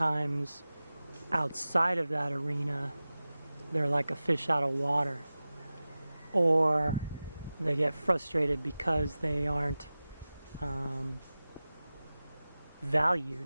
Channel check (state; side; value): inverted; both; correlation -0.96